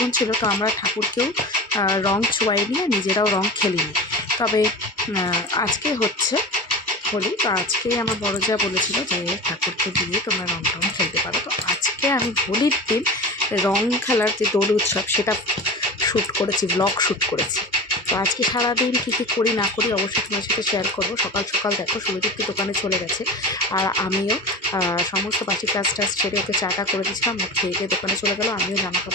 ছিল, তো আমরা ঠাকুরকেও রং ছোঁয়াইনি আর নিজেরাও রং খেলিনি। তবে আজকে হচ্ছে হোলি, তো আজকেই আমার বড় যা বলেছিল যে ঠাকুরকে দিয়ে তোমরা রং টং খেলতে পারো। তো আজকে আমি হোলির দিন রং খেলার যে দোল উৎসব সেটা শ্যুট করেছি, ব্লগ শ্যুট করেছি। তো আজকে সারাদিন কী কী করি না করি অবশ্যই তোমার সাথে শেয়ার করবো। সকাল সকাল দেখো সুরজিৎকে দোকানে চলে গেছে, আর আমিও সমস্ত বাসি কাজ টাজ ছেড়ে ওকে চাটা করে দিয়েছিলাম, মুখ খেয়ে গিয়ে দোকানে চলে গেলো। আমিও জামা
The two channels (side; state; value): both; normal; correlation 0.31